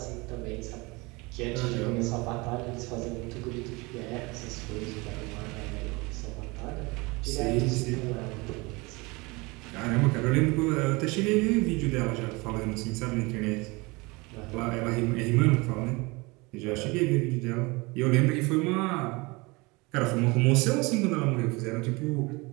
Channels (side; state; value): left; quieter; 25.3 dB